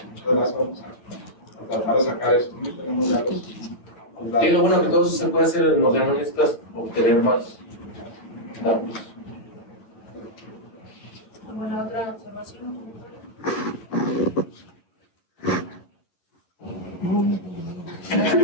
Muchas gracias. Vamos a tratar de sacar eso. No tenemos ya los Y lo bueno que todo eso se puede hacer en los analistas, obtener más datos. ¿Alguna otra observación?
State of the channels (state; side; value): late; right; 11 ms